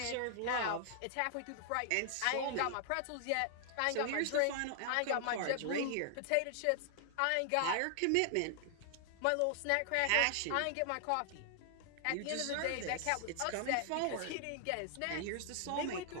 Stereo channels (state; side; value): different; both; correlation 0.00